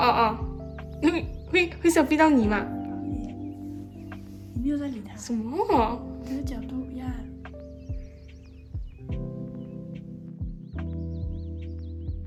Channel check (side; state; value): both; identical; correlation 1.00